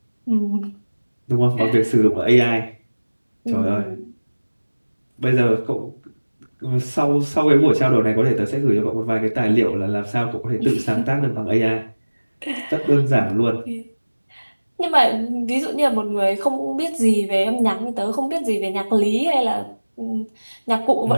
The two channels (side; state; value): both; inverted; correlation -1.00